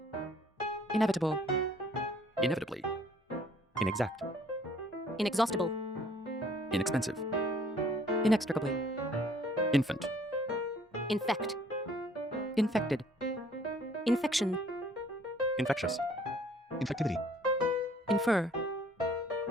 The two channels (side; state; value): both; normal; correlation 0.58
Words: Inevitable. Inevitably. Inexact. Inexhaustible. Inexpensive. Inextricably. Infant. Infect. Infected. Infection. Infectious. Infectivity. Infer.